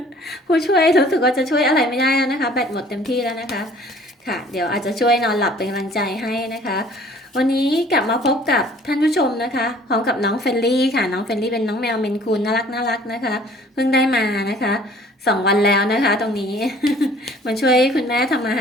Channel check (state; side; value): normal; both; correlation 0.53